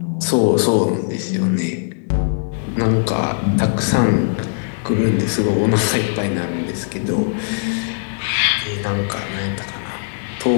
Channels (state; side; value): silent; right; digital silence